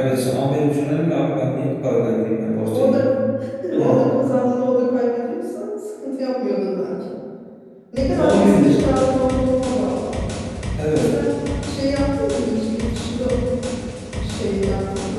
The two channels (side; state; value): both; identical; correlation 1.00